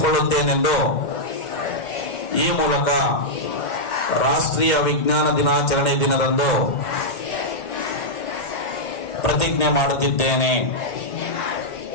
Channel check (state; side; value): late; right; 2.1 ms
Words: ಈ ಮೂಲಕ ರಾಷ್ಟ್ರೀಯ ವಿಜ್ಞಾನ ದಿನಾಚರಣೆ ದಿನದಂದು ಪ್ರತಿಜ್ಞೆ ಮಾಡುತ್ತಿದ್ದೇನೆ.